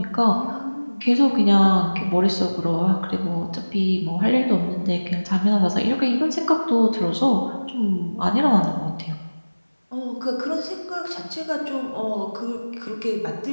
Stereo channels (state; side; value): inverted; both; correlation -1.00